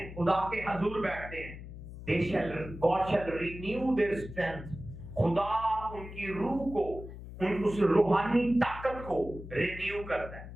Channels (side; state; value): left; noise; hum, 12 dB below the sound